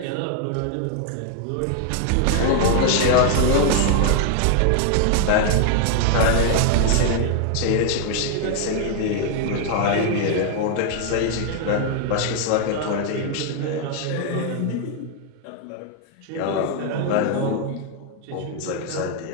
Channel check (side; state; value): both; different; correlation 0.00